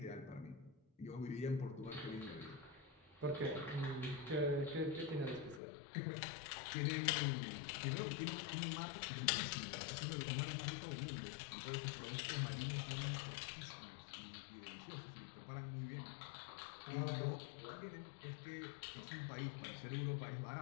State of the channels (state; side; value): drops out; right; at 5.6 s